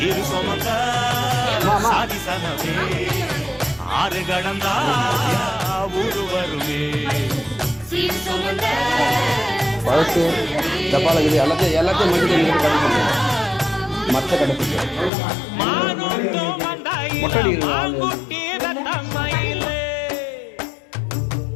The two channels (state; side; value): drops out; right; at 15.1 s